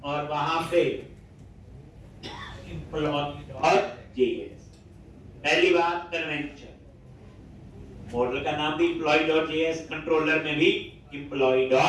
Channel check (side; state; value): both; identical; correlation 1.00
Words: और वहां पे employee.js, पहली बात कन्वेंशन, मॉडल का नाम भी employee.js, कंट्रोलर में भी